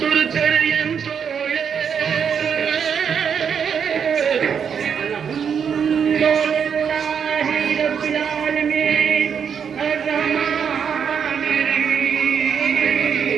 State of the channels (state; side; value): quieter; left; 7.2 dB